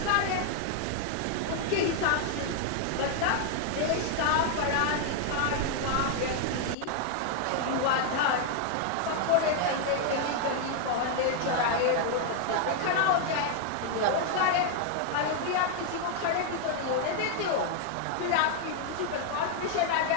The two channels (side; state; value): both; different; correlation 0.00